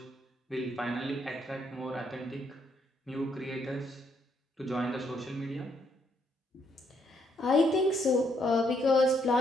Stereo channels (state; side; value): normal; both; correlation 0.73